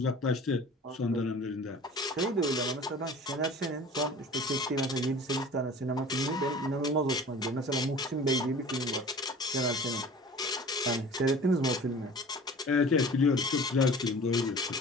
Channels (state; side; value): normal; both; correlation 0.42